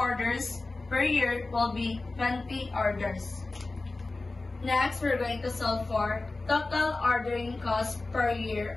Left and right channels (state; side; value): quieter; right; 3.3 dB